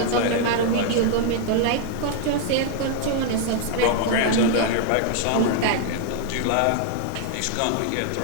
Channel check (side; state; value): both; different; correlation 0.00